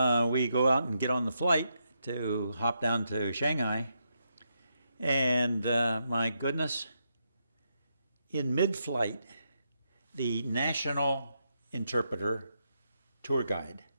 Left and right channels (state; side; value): inverted; both; correlation -0.82